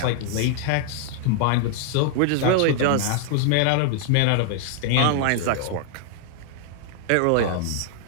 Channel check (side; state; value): both; different; correlation 0.00